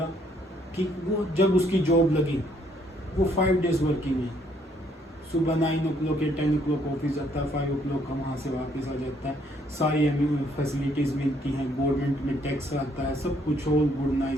कि वो जब उसकी जॉब लगी वो 5 डेज वर्किंग है, सुबह 9 o'clock या 10 o'clock ऑफिस जाता है, 5 o'clock का वहाँ से वापस आ जाता है, सारी फैसिलिटीज़ मिलती हैं, गवर्नमेंट में टैक्स आता है, सब कुछ all good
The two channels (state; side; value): normal; both; correlation 0.68